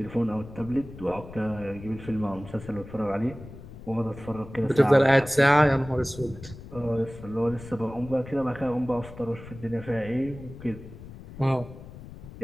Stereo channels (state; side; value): noise; left; rumble, 15 dB below the sound